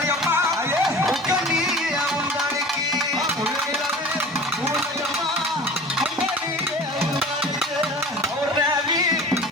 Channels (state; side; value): normal; both; correlation 0.40